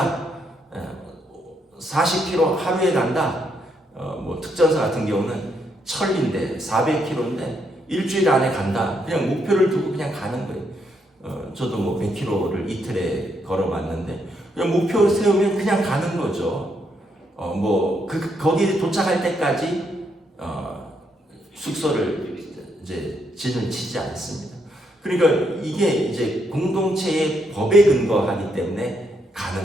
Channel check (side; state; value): both; normal; correlation 0.76